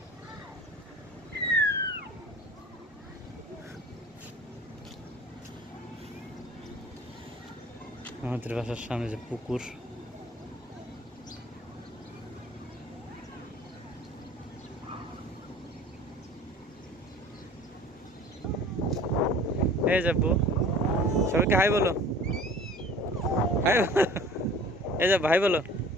আমাদের বাসার সামনে যে পুকুর এই যাবো সবাইকে হাই বলো হাই এই যা ভাই বলো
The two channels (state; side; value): normal; both; correlation 0.45